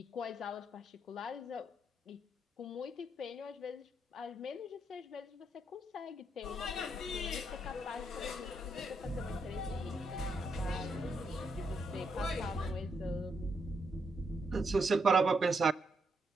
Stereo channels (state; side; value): normal; both; correlation 0.79